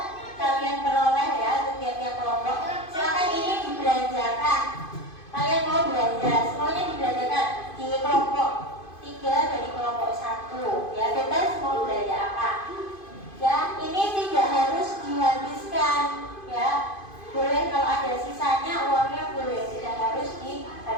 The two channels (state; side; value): late; right; 2.5 ms